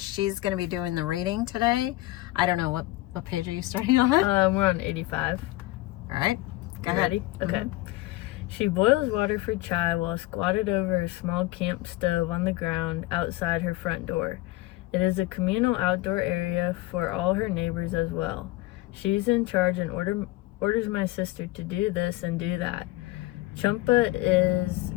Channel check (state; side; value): quieter; right; 18.3 dB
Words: going to be doing the reading today. I don't know, what page are you starting on? We're on 85. All right, go ahead. Ready? Okay. She boils water for chai while squatted over a small camp stove on the ground outside her front door. It is a communal outdoor area for all her neighbors as well. She's in charge and orders my sister to do this and do that. Champa is